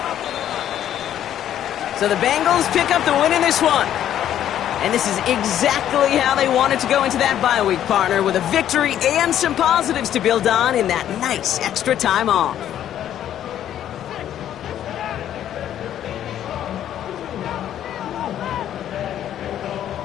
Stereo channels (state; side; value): quieter; right; 10.9 dB